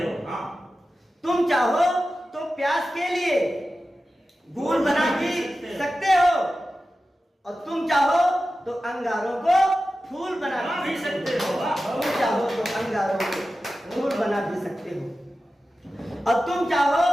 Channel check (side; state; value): both; normal; correlation 0.94